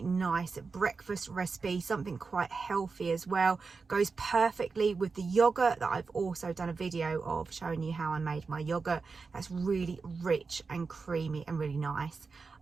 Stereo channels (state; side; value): quieter; left; 4.6 dB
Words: nice breakfast recipe, something quite healthy as well. Goes perfectly with the yogurt that I've also done a video of showing you how I made my yogurt. That's really rich and creamy and really nice.